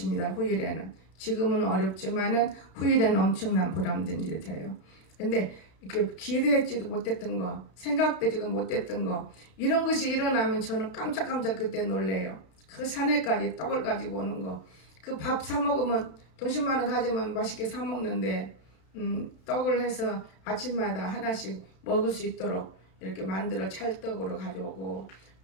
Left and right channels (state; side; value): late; right; 32 ms